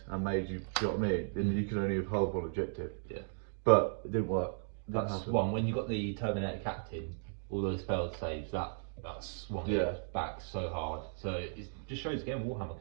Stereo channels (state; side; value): silent; left; digital silence